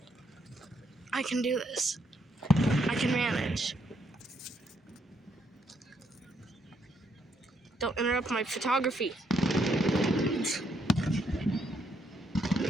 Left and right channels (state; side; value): normal; both; correlation 0.74